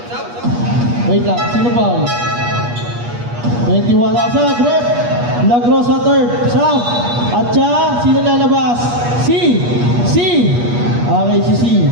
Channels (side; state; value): left; late; 8.4 ms